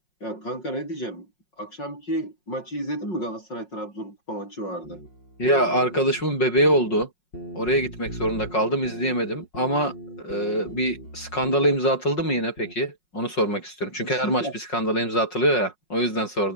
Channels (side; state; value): right; late; 5.5 ms